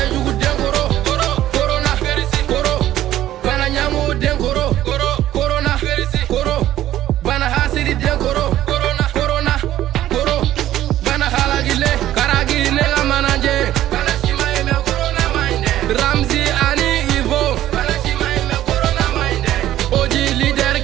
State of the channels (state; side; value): quieter; left; 13.2 dB